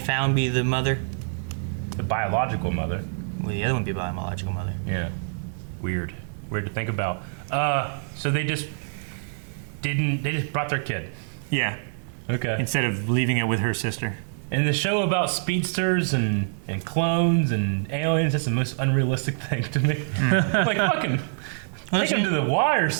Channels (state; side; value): silent; left; 61 dB below the other